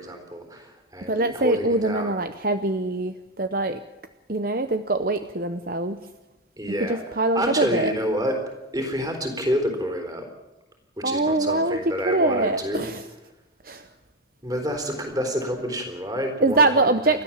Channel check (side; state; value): both; normal; correlation 0.09